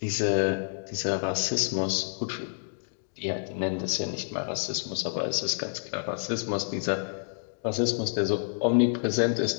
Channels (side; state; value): right; silent; digital silence